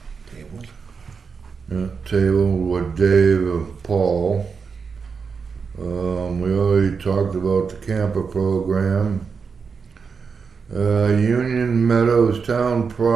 Table. tabled with Dave and Paul. We already talked about the camper program. Union Meadows Town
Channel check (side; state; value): left; quieter; 5.5 dB